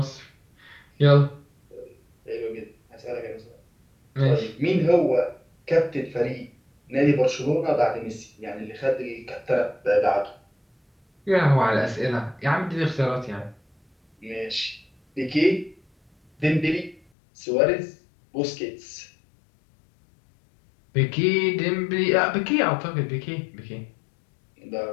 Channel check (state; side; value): drops out; right; at 17.0 s